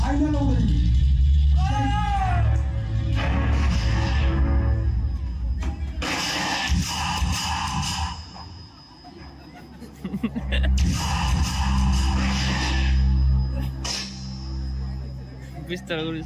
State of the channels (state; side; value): identical; both; correlation 1.00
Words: ওড়ি বিস্তার করি